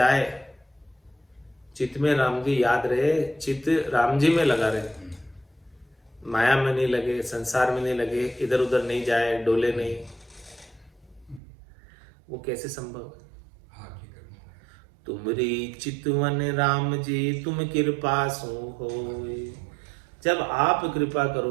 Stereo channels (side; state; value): left; drops out; at 11.4 s